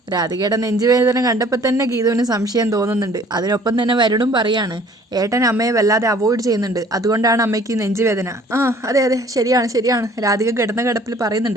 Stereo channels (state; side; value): normal; both; correlation 0.54